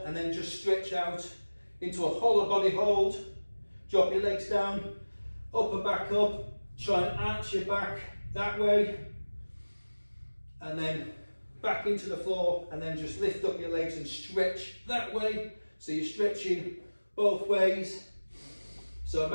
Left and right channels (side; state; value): both; inverted; correlation -1.00